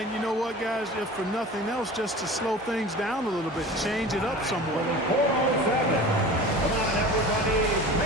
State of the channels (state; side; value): normal; both; correlation 0.37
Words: you know what, guys? If for nothing else, just to slow things down a little bit, change it up somewhat. 407. Come on, everybody,